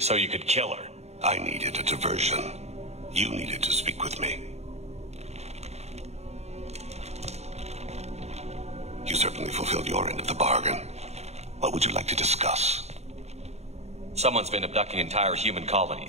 you could kill her. I needed a diversion. You needed to speak with me. You certainly fulfilled your end of the bargain. What would you like to discuss? Someone's been abducting entire human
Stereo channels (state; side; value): late; left; 0.31 ms